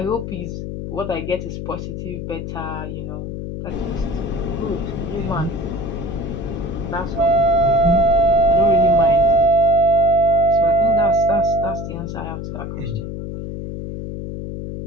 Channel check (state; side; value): noise; left; hum, 7 dB below the sound